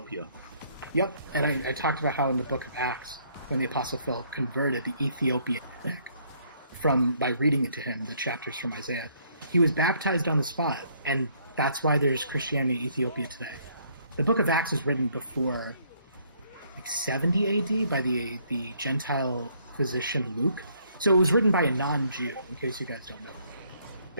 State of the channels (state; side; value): inverted; both; correlation -0.66